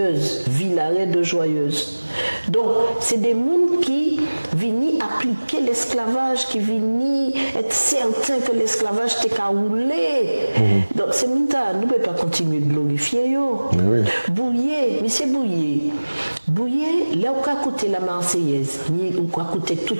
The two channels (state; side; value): inverted; both; correlation -1.00